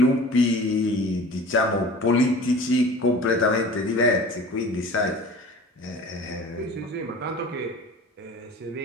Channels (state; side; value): normal; both; correlation 0.41